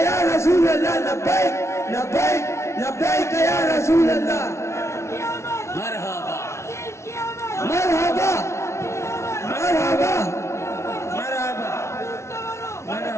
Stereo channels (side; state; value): right; late; 0.13 ms